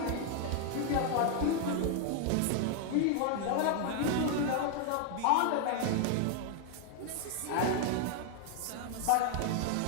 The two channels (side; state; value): both; different; correlation 0.00